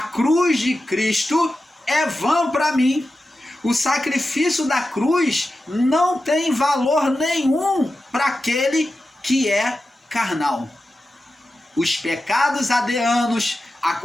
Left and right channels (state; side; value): normal; both; correlation 0.92